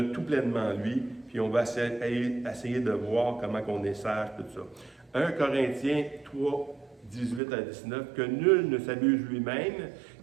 tout pleinement en lui, puis on va essayer de voir comment on est sage, tout ça. 1 Corinthiens 3, 18 à 19, que nul ne s'abuse lui-même.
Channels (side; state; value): left; drops out; at 7.4 s